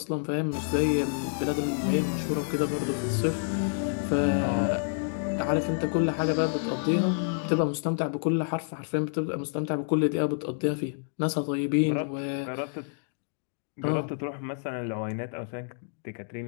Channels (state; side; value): silent; right; digital silence